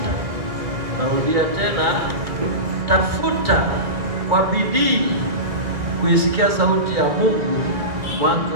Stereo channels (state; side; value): late; left; 2.2 ms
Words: Narudia tena, tafuta kwa bidii kuisikia sauti ya Mungu